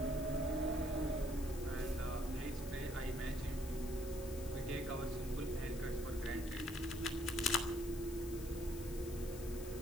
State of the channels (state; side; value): noise; left; hiss, 14 dB below the sound